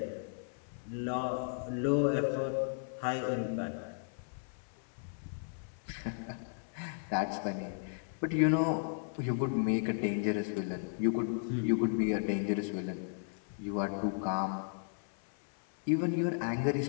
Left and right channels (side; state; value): right; silent; 55 dB below the other